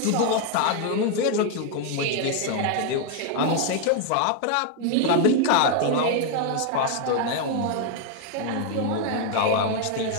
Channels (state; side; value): different; both; correlation 0.00